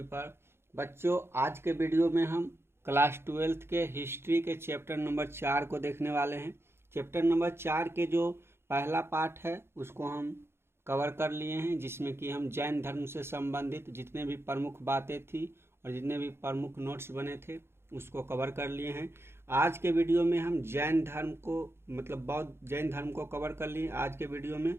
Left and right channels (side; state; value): left; late; 0.12 ms